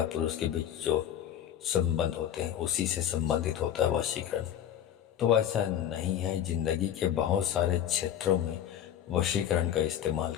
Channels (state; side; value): quieter; right; 10.4 dB